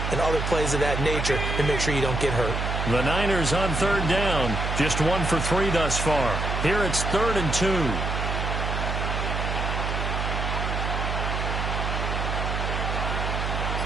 and other plays of that nature to make sure you don't get hurt. The Niners on 3rd down. Just 1 for 3 thus far. Here it's 3rd and 2.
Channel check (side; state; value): right; noise; hum, 2 dB below the sound